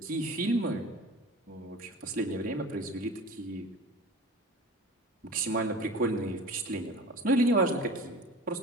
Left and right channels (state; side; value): normal; both; correlation 0.37